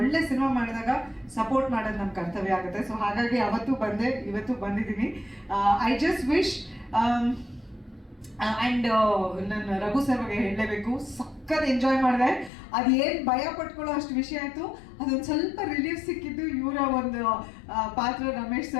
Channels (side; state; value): right; drops out; at 12.5 s